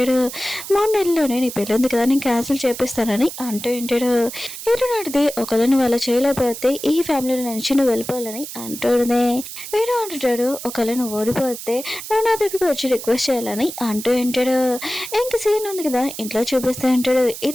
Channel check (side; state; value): right; noise; hiss, 10 dB below the sound